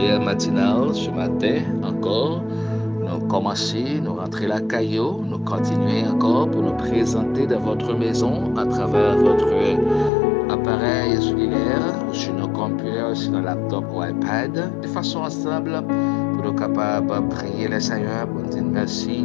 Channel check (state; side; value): drops out; right; at 10.1 s